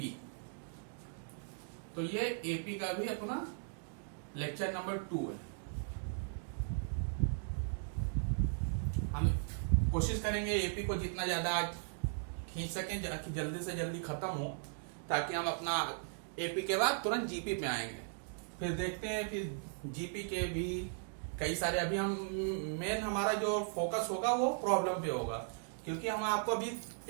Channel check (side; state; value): left; silent; digital silence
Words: तो ये एपी का भी अपना लेक्चर नंबर 2 है। हम कोशिश करेंगे एपी को जितना ज्यादा आज खींच सकें जल्दी से जल्दी खत्म हो, ताकि हम अपना एपी के बाद तुरंत जीपी पे आएंगे। फिर देखते हैं फिर जीपी के भी कई सारे। अभी हम मेन हमारा जो फोकस होगा वो प्रॉब्लम पे होगा, क्योंकि हम आपको अभी